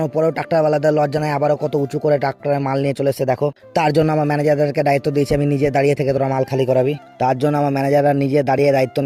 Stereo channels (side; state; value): both; identical; correlation 1.00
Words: পরেও ট্রাক্টরওয়ালাদের লজ্জা নাই, আবারও কত উঁচু করে ট্রাক্টরে মাল নিয়ে চলে এসে দেখো। তার জন্য আমার ম্যানেজারদেরকে দায়িত্ব দিয়েছি আমি নিজে দাঁড়িয়ে থেকে তোরা মাল খালি করাবি। তার জন্য আমার ম্যানেজাররা নিজে দাঁড়িয়ে দায়িত্ব